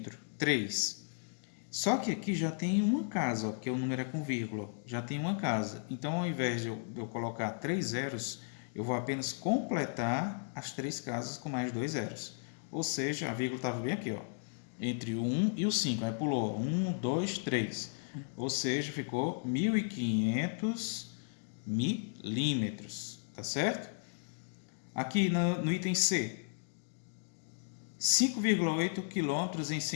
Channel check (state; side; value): silent; right; digital silence